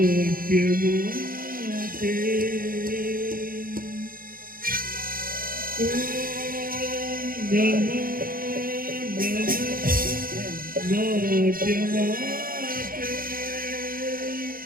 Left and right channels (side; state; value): left; late; 0.42 ms